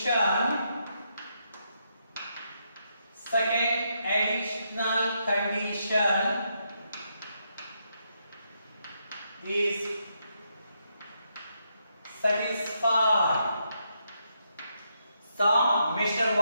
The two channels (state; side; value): inverted; both; correlation -0.80